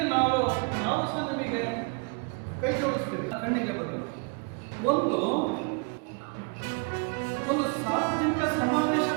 ನಾವು ಸಹ ನಿಮಗೆ ಕೈ ಜೋಡಿಸ್ತೀವಿ. ಕಣ್ಣಿಗೆ ಬದಲು ಒಂದು ಸಾರ್ವಜನಿಕ ಸಮಾವೇಶ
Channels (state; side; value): quieter; left; 33.6 dB